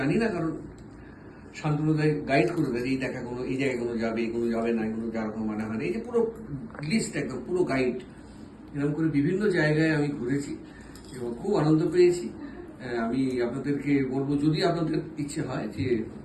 জানি না, কারণ শান্তনুদায় গাইড করে দেয় এই দেখাগুলো, এই জায়গাগুলো যাবে, এগুলো যাবে না, এগুলো যেরকম মানে হয় না, এই যে পুরো লিস্ট, একদম পুরো গাইড। এরকম করে বিভিন্ন জায়গায় আমি ঘুরেছি এবং খুব আনন্দ পেয়েছি। আমি আপনাদেরকে বলবো, যদি আপনাদের ইচ্ছে হয় যে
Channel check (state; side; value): identical; both; correlation 1.00